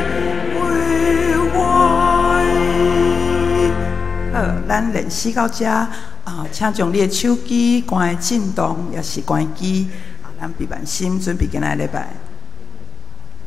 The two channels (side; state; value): right; quieter; 5.1 dB